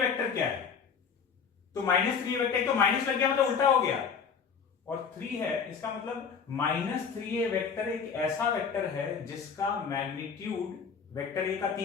वेक्टर क्या है, तो -3a वेक्टर, तो माइनस लग गया मतलब उल्टा हो गया, और 3 है इसका मतलब -3a वेक्टर एक ऐसा वेक्टर है जिसका मैग्नीट्यूड वेक्टर a का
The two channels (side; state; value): right; quieter; 6.3 dB